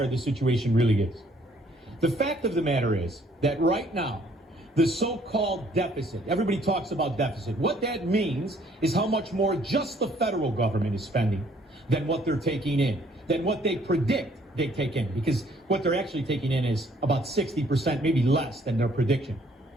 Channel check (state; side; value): normal; both; correlation 0.62